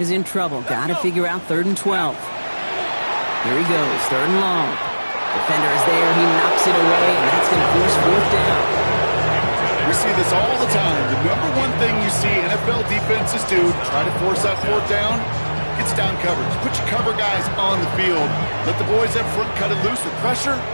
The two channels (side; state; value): both; inverted; correlation -1.00